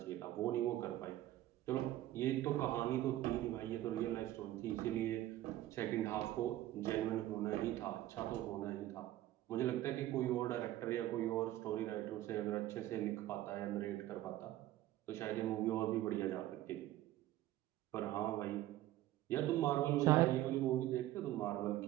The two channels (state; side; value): quieter; left; 14.5 dB